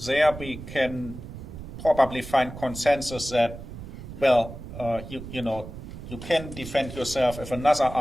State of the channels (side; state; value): right; noise; rumble, 12 dB below the sound